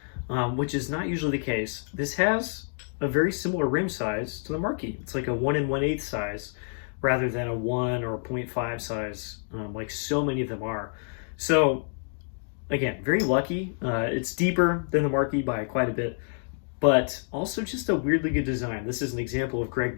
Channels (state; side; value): silent; right; 59 dB below the other